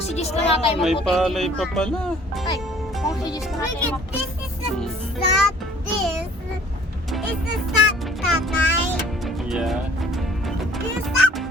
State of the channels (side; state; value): both; normal; correlation 0.54